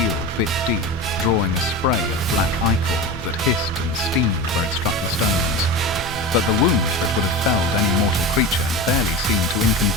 bit deep, drawing a spray of black ichor that hissed and steamed where it struck the stones. But the wound that would have felled any mortal creature barely seemed to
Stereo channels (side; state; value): both; normal; correlation 0.27